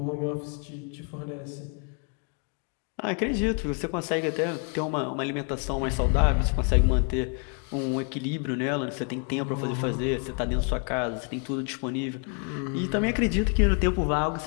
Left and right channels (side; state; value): right; quieter; 39.0 dB